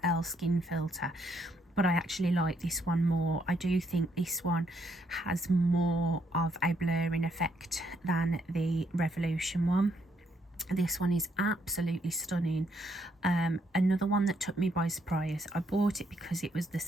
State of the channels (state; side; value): normal; both; correlation 0.73